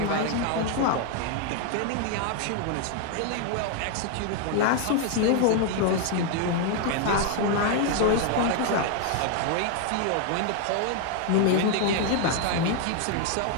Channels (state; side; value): different; both; correlation 0.01